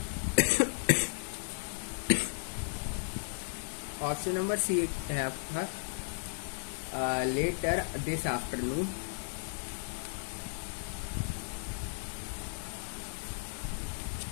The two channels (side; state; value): right; silent; digital silence